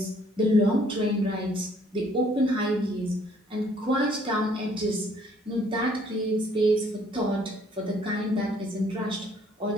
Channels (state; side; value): normal; both; correlation 0.62